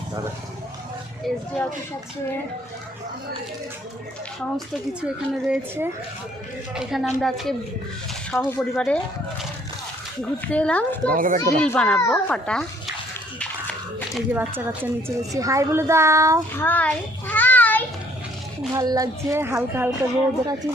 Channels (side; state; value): both; normal; correlation 0.62